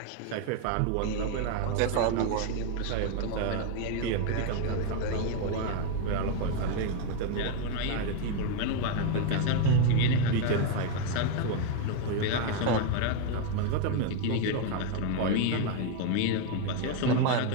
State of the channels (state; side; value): different; both; correlation 0.01